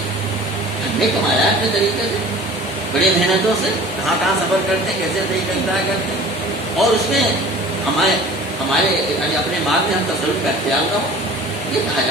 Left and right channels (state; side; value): normal; both; correlation 0.44